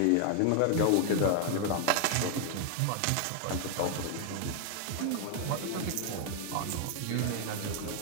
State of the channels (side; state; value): both; different; correlation 0.01